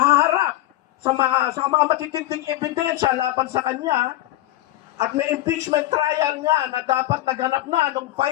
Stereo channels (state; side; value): quieter; right; 15.6 dB